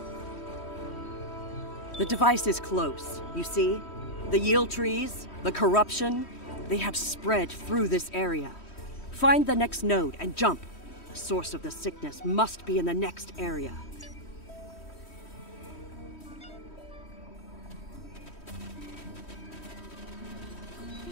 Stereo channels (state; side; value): late; right; 3.1 ms